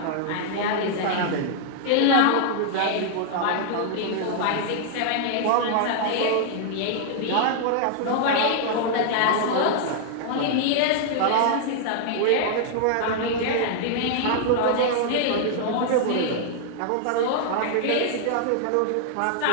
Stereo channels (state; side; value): different; both; correlation -0.01